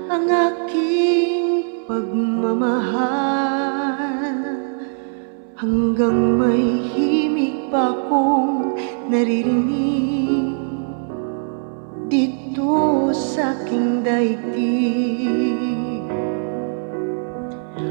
ang aking pagmamahal. Hanggang may himig pa akong naririnig dito sa aking daigdig.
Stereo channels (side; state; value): left; silent; 62 dB below the other